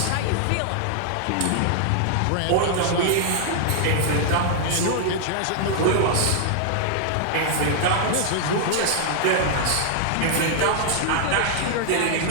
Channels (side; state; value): both; different; correlation -0.01